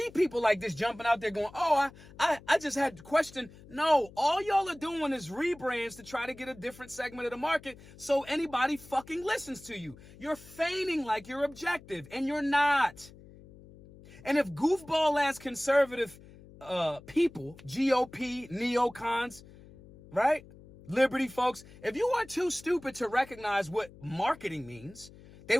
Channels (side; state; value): left; noise; hum, 21 dB below the sound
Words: people like this jumping out there going, oh, I just had to question. No, all y'all are doing is rebrands to try to get a different segment of the market so anybody fucking listens to you. You're feigning like you're objective and you're not. And if goofball-ass conservative people, GOP, neocons, right, liberty folks, if you are too stupid to recognize what marketing means, They